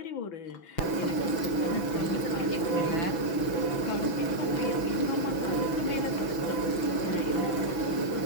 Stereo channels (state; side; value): late; right; 6.0 ms